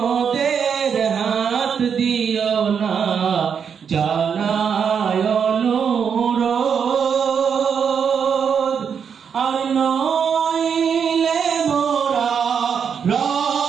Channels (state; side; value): quieter; left; 7.0 dB